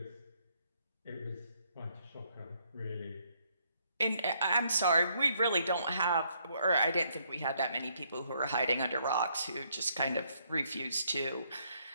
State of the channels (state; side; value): inverted; both; correlation -0.71